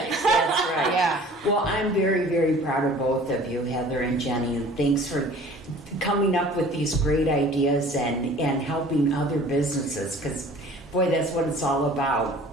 That's right. Yeah. Well, I'm very, very proud of both of you, Heather and Jenny, and thanks for coming up with these great ideas and helping other businesses, because boy, that's what it's all about.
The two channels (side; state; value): both; normal; correlation 0.47